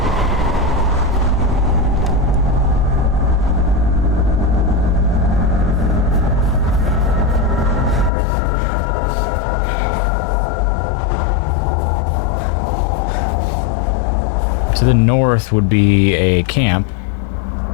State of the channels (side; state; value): right; drops out; at 8.1 s